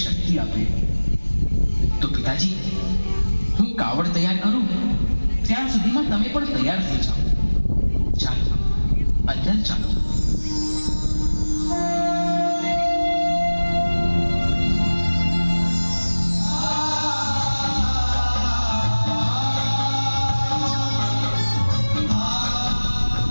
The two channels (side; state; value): both; inverted; correlation -1.00